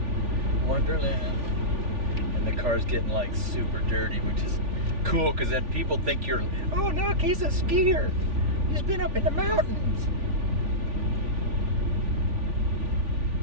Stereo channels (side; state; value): left; late; 3.4 ms